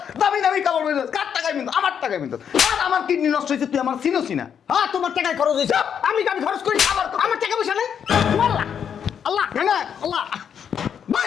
দামি দামি কাপড় পরিস কার টাকায় মিন্ত আমার টাকায় মিন্ত আর আমার কিডনি নষ্ট হইছে তুই আমার চিনোস না হ্যাঁ তোমার টাকায় খরচ হয়েছে আমি খরচ করি আমার টাকা পয়সা নাই আল্লাহ আল্লাহ না আল্লাহ ভাই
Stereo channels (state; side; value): quieter; right; 8.0 dB